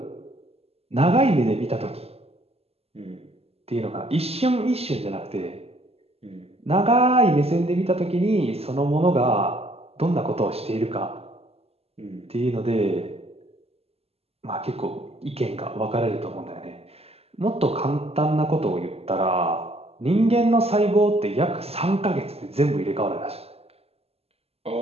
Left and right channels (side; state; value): left; late; 0.29 ms